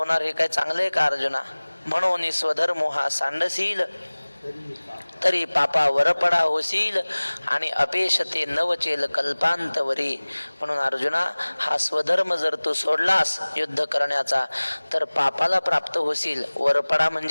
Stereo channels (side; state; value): both; inverted; correlation -1.00